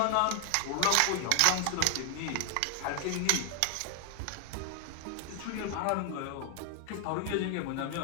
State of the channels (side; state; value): both; different; correlation 0.00